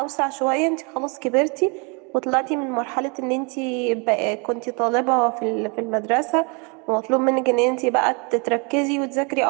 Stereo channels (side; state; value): left; quieter; 33.0 dB